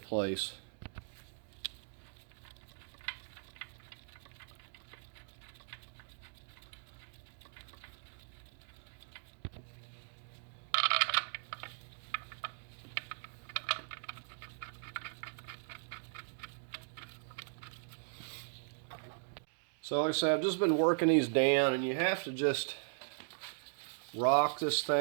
So like I said, I've just been working these down, and you have to just rock this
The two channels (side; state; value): left; silent; digital silence